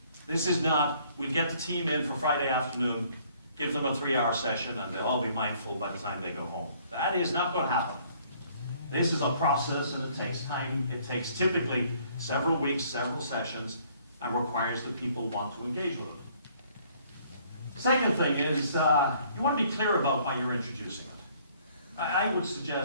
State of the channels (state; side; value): inverted; both; correlation -0.61